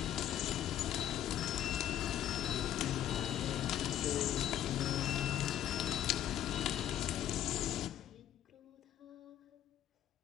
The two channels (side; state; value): right; quieter; 11.4 dB